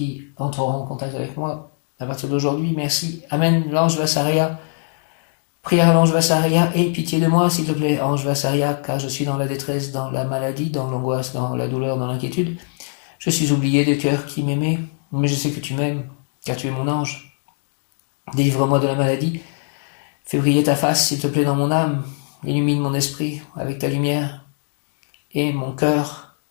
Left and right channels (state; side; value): silent; right; 64 dB below the other